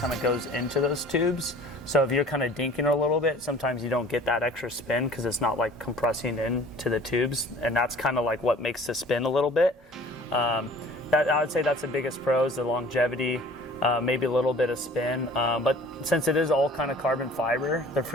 of goes into those tubes. So if you're kind of dinking a little bit, sometimes you don't get that extra spin because it's not like compressing into the tubes, and that's kind of like what makes the spin a little bit. I would say that's the biggest pros, the longevity, maybe a little bit of spin. But since it is all kind of carbon fiber, the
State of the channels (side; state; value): both; normal; correlation 0.48